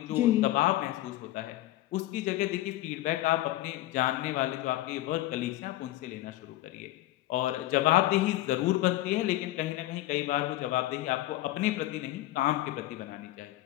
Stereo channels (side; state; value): right; quieter; 16.0 dB